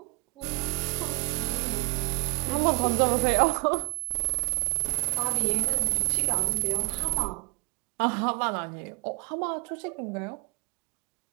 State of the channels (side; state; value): left; quieter; 26.7 dB